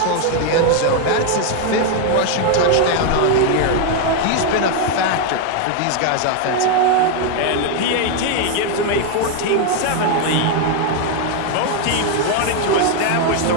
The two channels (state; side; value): different; both; correlation 0.01